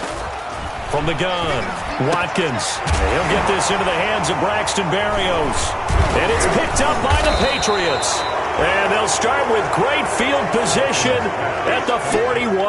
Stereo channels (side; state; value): both; identical; correlation 1.00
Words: From the gun, Watkins. He'll get this into the hands of Braxton Berrios. And it's picked up by the Patriots. And they'll start with great field position at the